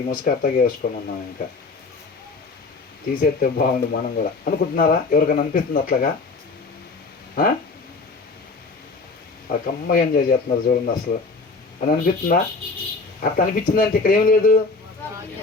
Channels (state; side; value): quieter; right; 3.9 dB